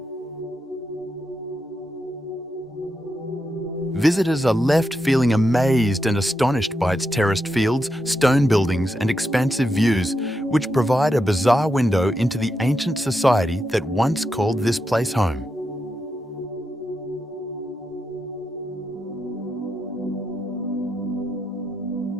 Visitors are left feeling amazed and astonished by its terraced fields, stone buildings, and expansive views, which provide a bizarre window into the ancient society that once called this place home.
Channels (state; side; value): normal; both; correlation 0.85